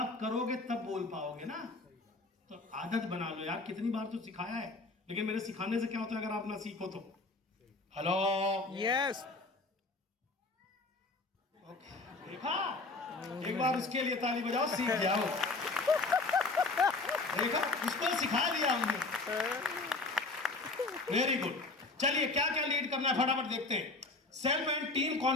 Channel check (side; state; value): right; quieter; 3.4 dB